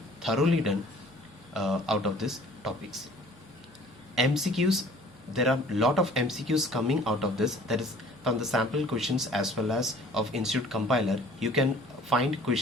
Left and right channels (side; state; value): both; normal; correlation 0.52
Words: thoroughly done out of these topics. MCQs, there are a lot of MCQs coming out of this. That is from the sample questions as well as of institute compiler. You can find